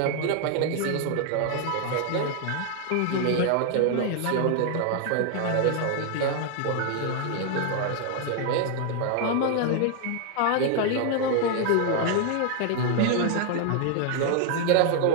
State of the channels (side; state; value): both; different; correlation 0.00